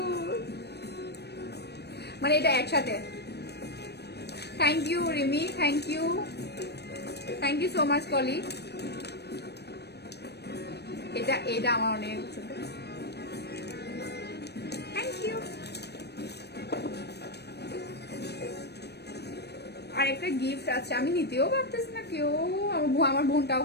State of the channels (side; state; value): right; late; 0.48 ms